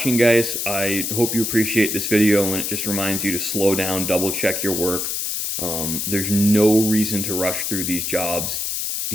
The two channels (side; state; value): left; noise; hiss, 2 dB below the sound